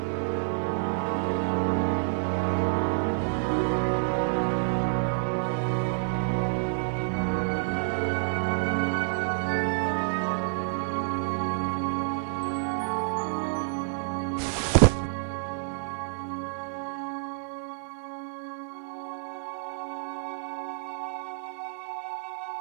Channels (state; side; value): silent; left; 59 dB below the other